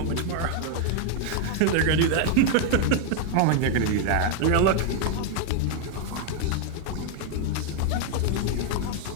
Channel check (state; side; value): different; both; correlation 0.00